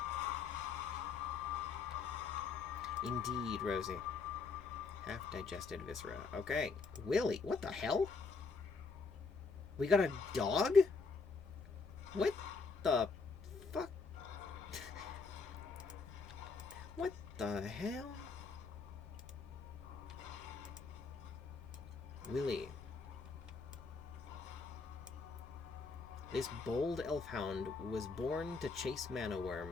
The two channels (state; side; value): quieter; right; 4.5 dB